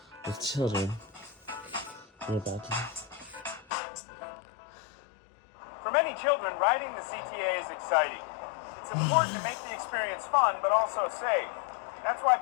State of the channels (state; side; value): drops out; right; at 3.7 s